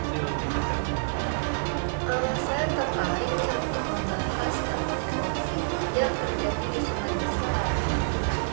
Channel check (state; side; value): silent; left; digital silence